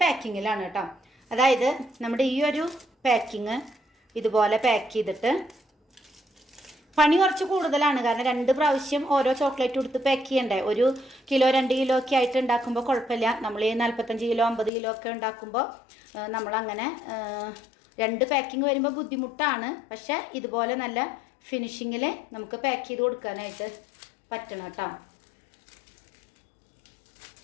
പാക്കിങ്ങിലാണ് കേട്ടോ. അതായത് നമ്മുടെ ഈ ഒരു പാക്കിങ് ഇതുപോലെ പാക്ക് ചെയ്തിട്ട് പണി കുറച്ച് കൂടുതലാണ്. കാരണം 2 പ്രാവശ്യം ഓരോ ചോക്ലേറ്റ് കൊടുത്ത് പാക്ക് ചെയ്യണ്ടേ. 1 കിലോ 2 കിലോ ഒക്കെ ആയിട്ട് ഉണ്ടാക്കുമ്പോൾ കുഴപ്പമില്ല. നമ്മൾ ഈ 45 കിലോ 50 കിലോ ഒക്കെ ഉണ്ടാക്കുമ്പോൾ നമ്മളങ്ങനെ 2 പാക്കിങ് വരുമ്പോൾ ബുദ്ധിമുട്ടാണ്. പക്ഷേ ഇതുപോലെ നല്ല ഫിനിഷിങ്ങിൽ നമുക്ക് പാക്ക് ചെയ്ത് കൊടുക്കാനായിട്ട് പറ്റണം കേട്ടോ.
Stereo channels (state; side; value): drops out; right; at 14.7 s